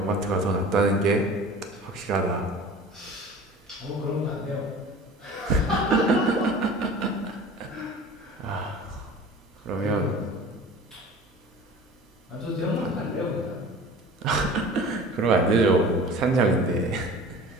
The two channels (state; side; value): normal; both; correlation 0.41